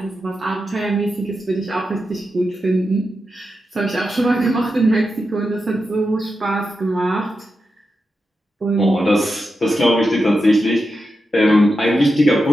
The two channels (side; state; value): both; normal; correlation 0.88